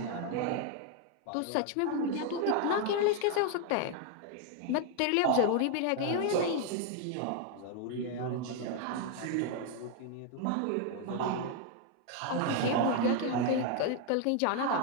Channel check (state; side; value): different; both; correlation 0.01